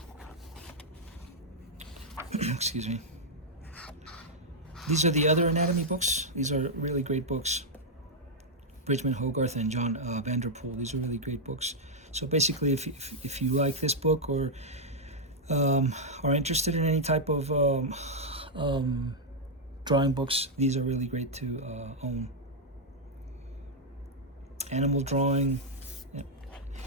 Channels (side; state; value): both; normal; correlation -0.03